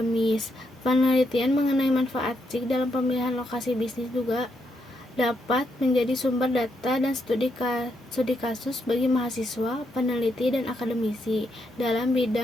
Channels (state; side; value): normal; both; correlation 0.79